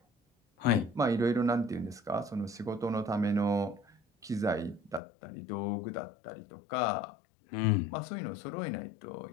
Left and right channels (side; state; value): right; drops out; at 5.0 s